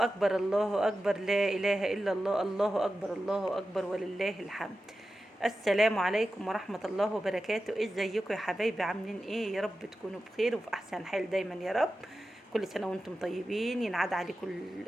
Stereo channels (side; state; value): both; normal; correlation 0.93